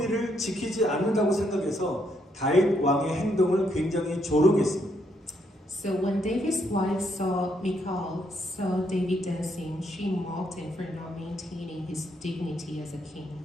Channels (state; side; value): normal; both; correlation 0.74